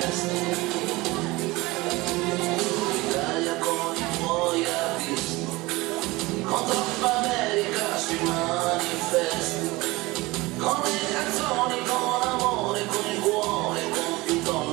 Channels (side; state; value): left; quieter; 21.5 dB